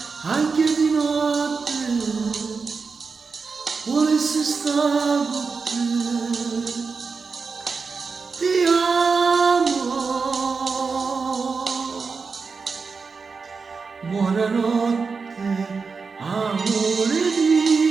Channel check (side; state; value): left; quieter; 4.9 dB